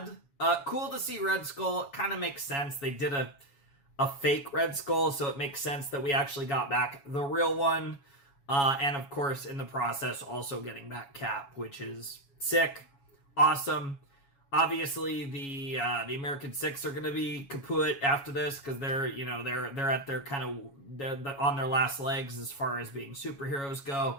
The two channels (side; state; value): right; late; 7.2 ms